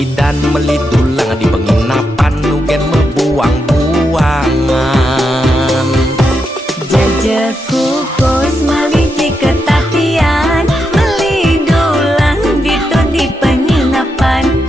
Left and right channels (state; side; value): normal; both; correlation 0.84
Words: melidulang di penginapan nugen membuang-buangan Jajak kukus meliti ketatian melidulang ditu di penginapan